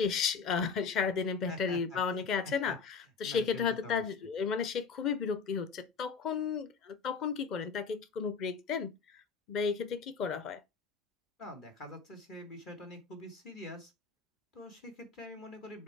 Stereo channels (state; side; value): quieter; right; 5.5 dB